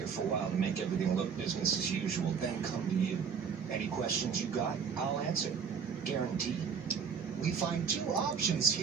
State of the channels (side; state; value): left; quieter; 6.5 dB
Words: for a while to make everything look business as usual, then come to you. Any questions you got, I'll answer. Guaranteed. We find 2 options